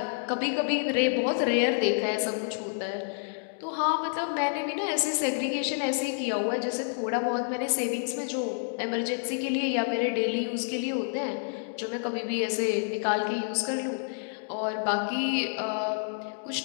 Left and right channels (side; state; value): right; silent; digital silence